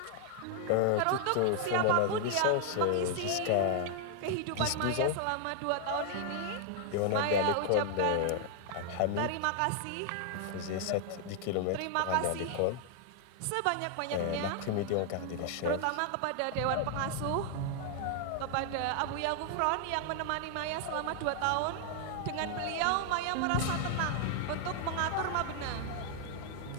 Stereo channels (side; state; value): both; different; correlation 0.00